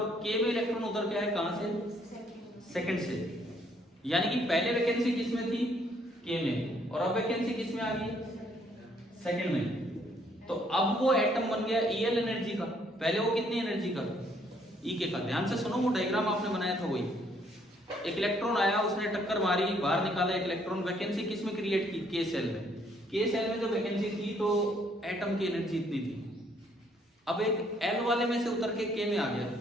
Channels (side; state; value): both; normal; correlation 0.67